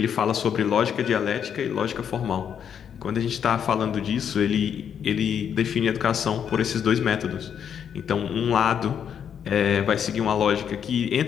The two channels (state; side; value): quieter; right; 8.2 dB